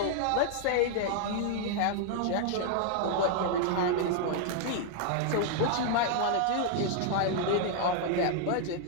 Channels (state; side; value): different; both; correlation 0.00